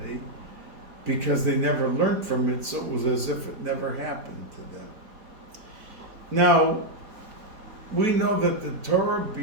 because they never learned from it, so it was as if it never happened to them. Now, we know that the Torah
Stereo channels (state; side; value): late; left; 4.5 ms